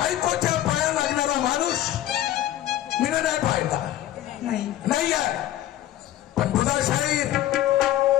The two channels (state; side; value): quieter; right; 13.2 dB